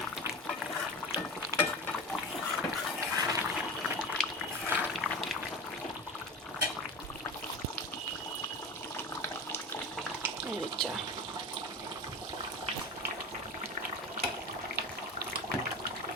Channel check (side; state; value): both; normal; correlation 0.30